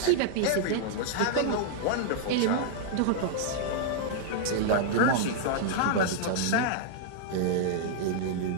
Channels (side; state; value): both; different; correlation -0.01